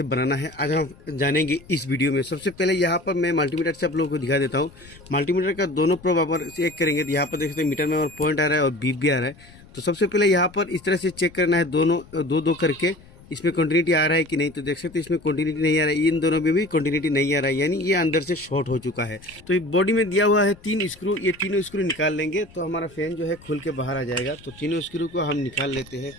बनाना है आज हम जानेंगे इस वीडियो में। सबसे पहले यहाँ पर मैं मल्टीमीटर से आप लोगों को दिखा देता हूँ। मल्टीमीटर का दोनों प्रोब आप चेक करेंगे तो यहाँ पर देख सकते हैं मीटर में और पॉइंट आ रहा है और बीप भी आ रहा है। तो सबसे पहले यहाँ पर इस तरह से चेक करना है, दोनों दो दो करके इसमें कंटिन्यूटी आ रहा है कि नहीं। तो देख सकते हैं इसमें कंटिन्यूटी नहीं आ रहा है, इन दोनों में भी कंटिन्यूटी नहीं आ रहा है, यानी ये अंदर से शॉर्ट हो चुका है। तो ये बॉडी में दिया हुआ है 3 स्क्रू, ये तीनों स्क्रू निकाल लेंगे तो हमारा फैन जो है खुल के बाहर आ जाएगा। तो तीनों स्क्रू को हम निकाल लेते हैं।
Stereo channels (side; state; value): left; noise; rumble, 23 dB below the sound